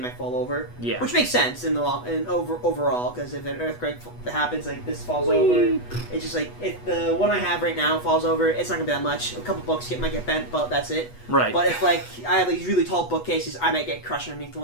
fall over. Yeah. Which makes sense in the overall, because if an earthquake happens, like this falls over, it's just like if the one I have right now falls over, it's not gonna be that much. A couple books might get bent, but that's it. Right. But if like I have these really tall bookcases, I might get crushed underneath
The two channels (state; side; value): late; right; 8.2 ms